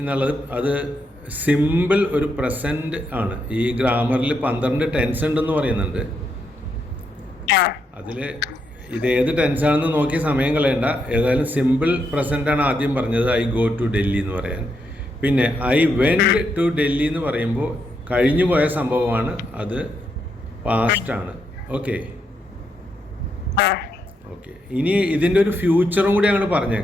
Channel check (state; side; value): normal; both; correlation 0.79